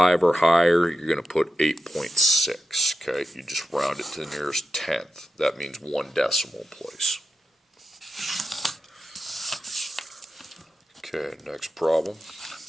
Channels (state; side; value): normal; both; correlation 0.91